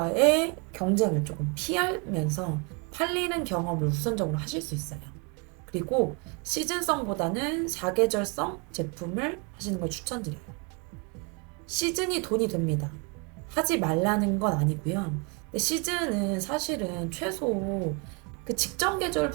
경쟁을 조금 피하면서 팔리는 경험을 우선적으로 하실 수 있어요. 그리고 시즌성보다는 사계절성 제품을 하시는 걸 추천드려요. 시즌이 돈이 됩니다. 하지 말라는 건 아니고요. 근데 시즌은 사실은 최소 그 직전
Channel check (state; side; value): quieter; left; 32.8 dB